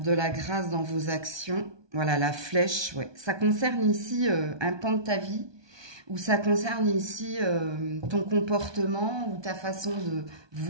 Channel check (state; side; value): late; left; 1.2 ms